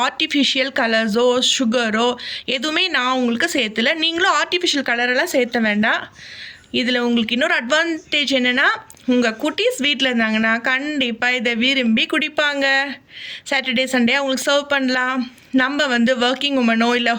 ஆர்டிஃபிஷியல் கலர்ஸோ சுகரோ எதுவுமே நான் உங்களுக்கு சேர்த்துல. நீங்களும் ஆர்டிஃபிஷியல் கலரெல்லாம் சேர்த்த வேண்டாம். இதில் உங்களுக்கு இன்னொரு அட்வான்டேஜ் என்னென்னா, உங்கள் குட்டீஸ் வீட்டில் இருந்தாங்கன்னா கண்டிப்பாக இதை விரும்பி குடிப்பாங்க. சாட்டர்டே சண்டே அவங்களுக்கு சர்வ் பண்ணலாம். நம்ம ஒர்க்கிங் உமனோ இல்லை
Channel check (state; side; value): identical; both; correlation 1.00